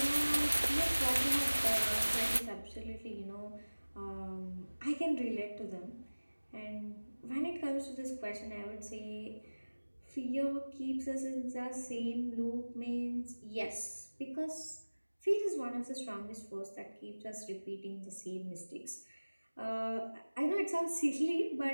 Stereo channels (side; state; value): both; inverted; correlation -1.00